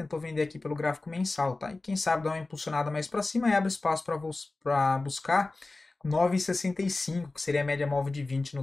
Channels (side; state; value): right; quieter; 3.3 dB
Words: vender aqui pelo gráfico mensal, tá? E quem sabe dar uma impulsionada mais para cima e abre espaço para buscar 9,65, que seria a média móvel de 20 no